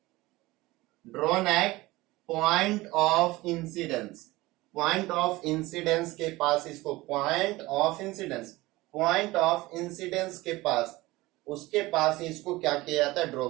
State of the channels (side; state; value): left; quieter; 19.9 dB